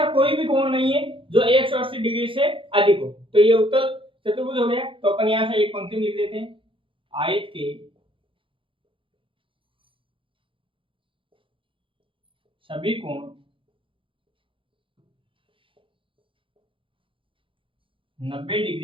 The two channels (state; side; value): late; left; 0.25 ms